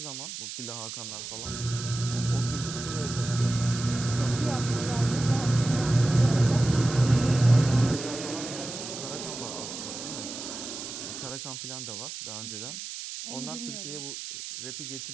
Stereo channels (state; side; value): noise; right; hiss, 8 dB below the sound